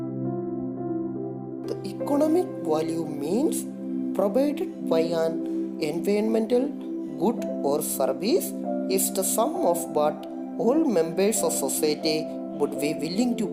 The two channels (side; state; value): both; identical; correlation 1.00